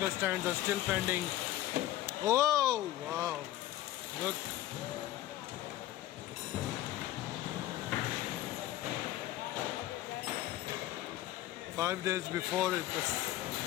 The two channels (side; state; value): right; quieter; 14.4 dB